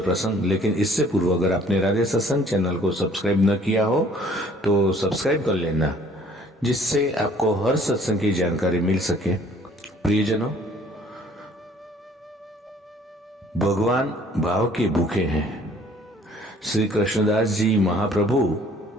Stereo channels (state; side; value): normal; both; correlation 0.57